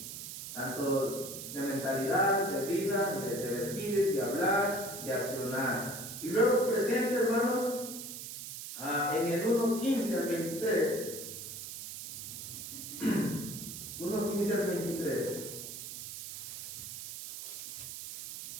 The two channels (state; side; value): noise; right; hiss, 8 dB below the sound